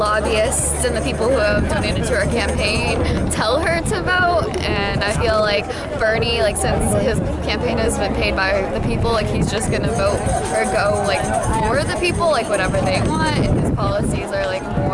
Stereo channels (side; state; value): both; identical; correlation 1.00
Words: and the people who have donated to her campaign tell her to vote. And I feel like Bernie, like since his campaign has been paid by the people, like he's just gonna vote or go like for the people, like whatever they want. And his policies are like